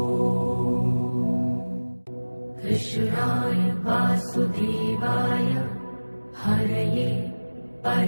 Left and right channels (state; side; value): inverted; both; correlation -1.00